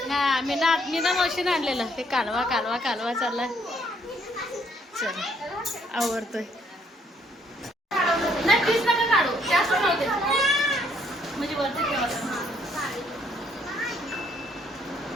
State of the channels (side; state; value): both; normal; correlation 0.67